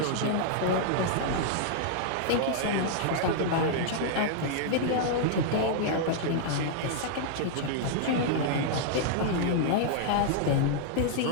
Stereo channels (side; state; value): both; different; correlation -0.01